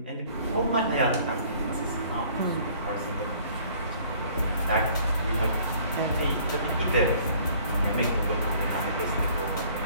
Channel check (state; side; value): inverted; both; correlation -0.56